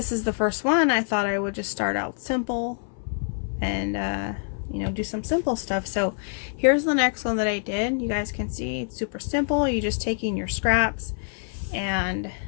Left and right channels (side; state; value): right; silent; 59 dB below the other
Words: is the first one, I thought I would just start out simple and, you know, do some simple stuff. So here's the next one that I did. You guys can see it's super simple. You're just taking your scraps and